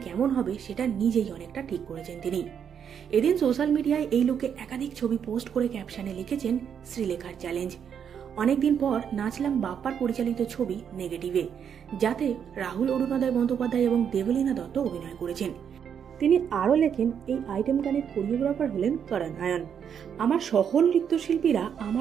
হবে সেটা নিজেই অনেকটা ঠিক করেছেন তিনি। এদিন সোশ্যাল মিডিয়ায় এই লুকে একাধিক ছবি পোস্ট করে ক্যাপশনে লিখেছেন, শ্রীলেখার চ্যালেঞ্জ। অনেকদিন পর নাচলাম বাপ্পার পরিচালিত ছবি নেগেটিভে, যাতে রাহুল অরুণোদয় বন্দ্যোপাধ্যায় এবং দেবলীনা দত্ত অভিনয় করেছেন। তিনি আরও লেখেন, এই আইটেম গানের কোরিওগ্রাফার হলেন করণ আয়ন। আমার সকল নৃত্যশিল্পীরা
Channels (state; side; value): quieter; left; 7.9 dB